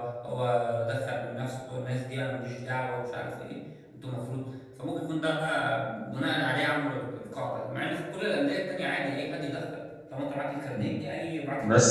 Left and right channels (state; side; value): identical; both; correlation 1.00